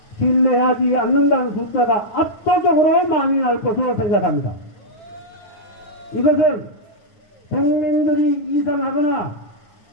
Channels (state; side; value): late; right; 9.4 ms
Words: 신뢰하지 않는다는 숫자가 압도적으로 많이 날 것으로 생각합니다. 이것은 국민들이 이상하거나